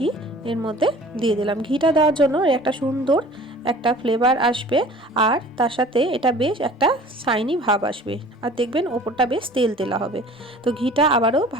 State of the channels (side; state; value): both; normal; correlation 0.46